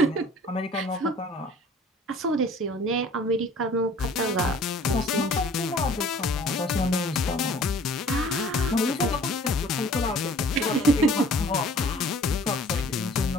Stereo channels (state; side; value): normal; both; correlation 0.51